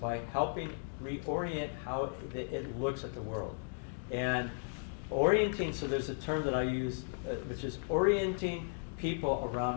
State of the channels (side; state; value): right; silent; digital silence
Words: helping reorient how it looks at the world. And orienting, so there's a term that I use, which is orienting people